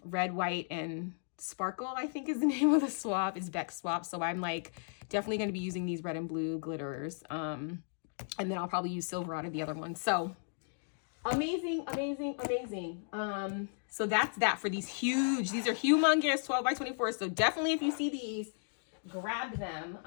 white, and sparkle, I think is the name of the swap. It's Beck swap. So I'm like definitely going to be using these red and blue glitters. And then I'll probably use silver out of the other one. So amazing, amazing, amazing. So that's that for these are humongous 12 by 24. So definitely, if you see these, grab them.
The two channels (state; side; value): silent; right; digital silence